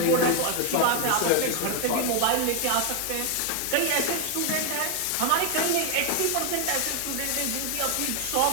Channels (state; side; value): different; both; correlation 0.01